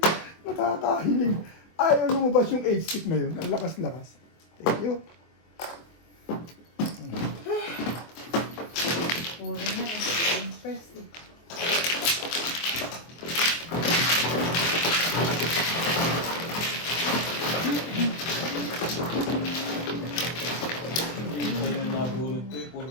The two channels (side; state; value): right; late; 24 ms